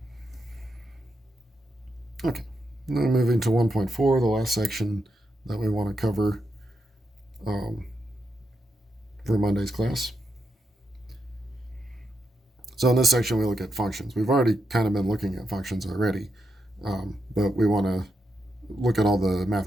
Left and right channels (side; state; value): both; normal; correlation 0.84